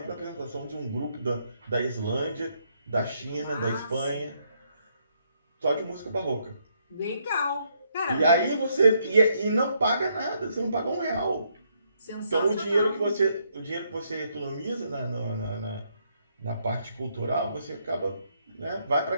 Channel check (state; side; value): inverted; both; correlation -0.74